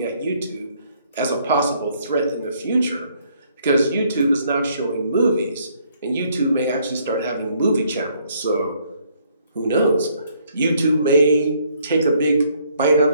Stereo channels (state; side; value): inverted; both; correlation -0.67